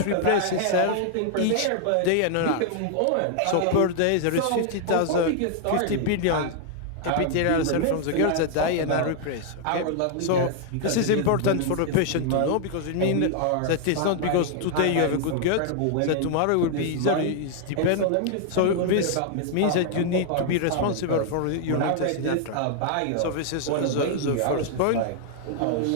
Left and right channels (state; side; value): different; both; correlation 0.00